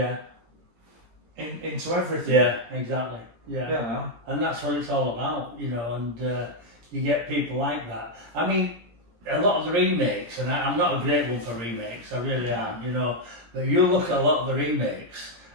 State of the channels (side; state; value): left; late; 17 ms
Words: into everything. And that's what it's all about, you know, and you get people like that. I mean, a lot of the remakes, and I'm not a great one for remakes, I really am, you know, but you look at a lot of the remakes,